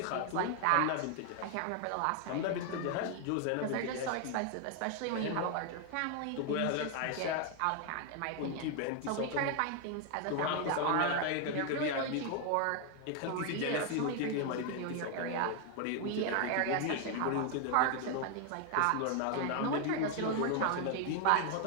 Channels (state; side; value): different; both; correlation 0.00